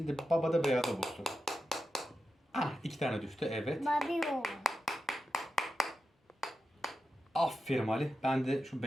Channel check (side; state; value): both; normal; correlation 0.90